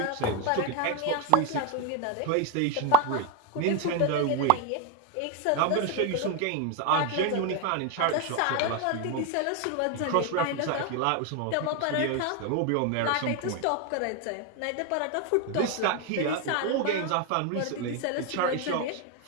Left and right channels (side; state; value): both; different; correlation 0.02